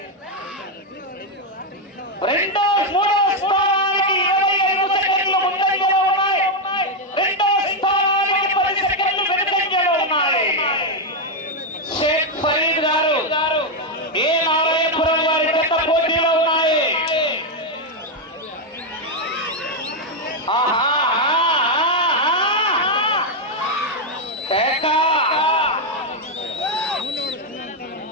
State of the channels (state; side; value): normal; both; correlation 0.03